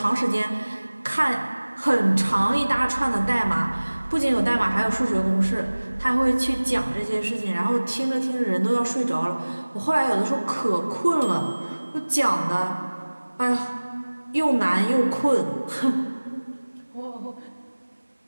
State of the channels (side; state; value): both; inverted; correlation -1.00